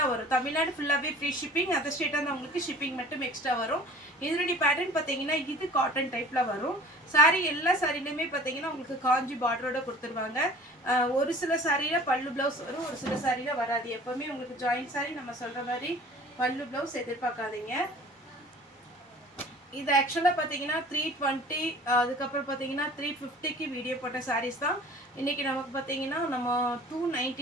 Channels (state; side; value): normal; both; correlation 0.46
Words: வரும். தமிழ்நாடு ஃபுல்லாவே ஃப்ரீ ஷிப்பிங். அதர் ஸ்டேட்டா இருந்தா உங்களுக்கு ஷிப்பிங் மட்டும் எக்ஸ்ட்ரா வரும். இதனுடைய பேட்டர்ன் பாத்தீங்கன்னா இது காட்டன் டைப்ல வரும். சாரி எல்லா சாரிலயுமே பாத்தீங்கன்னா உங்களுக்கு காஞ்சி பார்டரோட கொடுத்துருவாங்க. ஒரு சில சாரியில பல்லு பிளவுஸ் வரும், ஒரு சில சாரியில வராது. எப்பவுமே உங்களுக்கு ஜாயிண்ட் சாரி நம்ம சொல்ற மாதிரி பல்லு பிளவுஸ் எதிர்பார்க்காதீங்க. இது ஆக்சுவலாக பார்த்தீங்கன்னா 320 அதுக்கப்புறம் பார்த்தீங்கன்னா 350க்கு வீடியோ போட்ட சாரீஸ் தான். இன்றைக்கி நமக்கு பார்த்தீங்கன்னா நம்ம